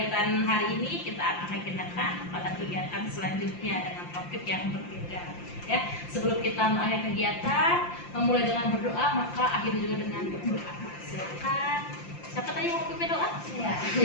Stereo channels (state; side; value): late; right; 5.8 ms